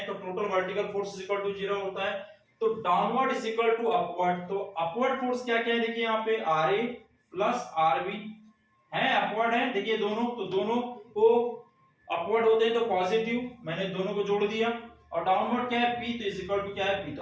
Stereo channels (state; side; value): identical; both; correlation 1.00